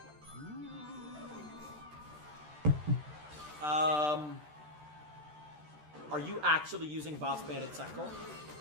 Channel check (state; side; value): late; left; 13 ms